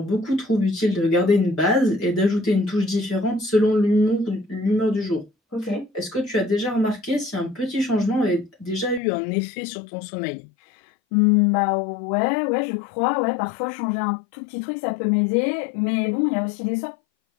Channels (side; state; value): right; drops out; at 9.0 s